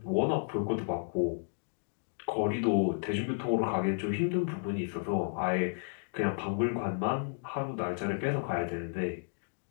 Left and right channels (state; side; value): silent; right; digital silence